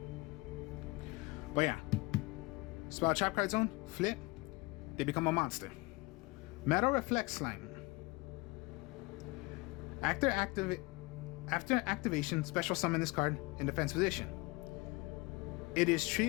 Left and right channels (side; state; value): right; quieter; 24.6 dB